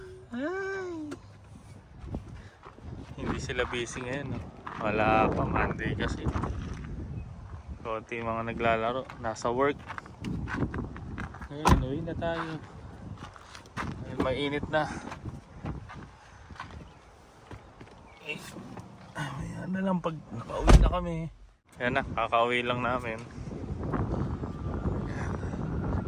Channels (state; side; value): identical; both; correlation 1.00